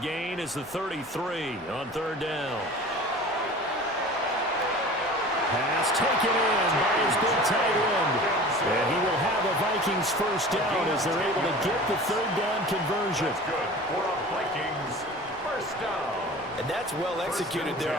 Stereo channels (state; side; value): normal; both; correlation 0.40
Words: is the 33 on 3rd down. Pass taken in by his big tight end. And he will have a Vikings 1st down as they're able to get the 3rd down conversion. That's good for a Vikings 1st down. And that's well executed there